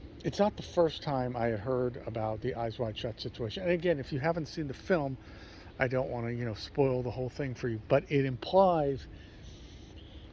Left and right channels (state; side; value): identical; both; correlation 1.00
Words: it's not the first time I had heard about the Eyes Wide Shut situation. And again, if you haven't seen the film, I don't want to, spoil the whole thing for you. But it implies